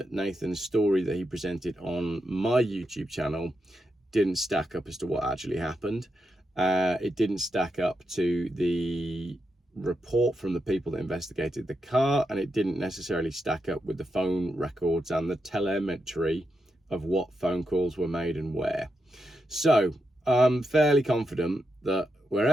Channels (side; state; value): both; normal; correlation 0.86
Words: Nathan's story that he presented on my YouTube channel didn't stack up as to what actually happened. It didn't stack up to the report from the people that investigated the car, and it didn't necessarily stack up with the phone records and the telemetry of what phone calls were made and where. So I'm fairly confident that